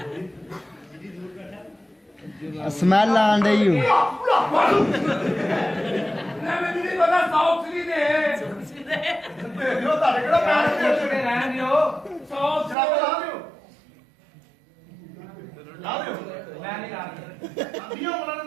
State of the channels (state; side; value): drops out; left; at 12.8 s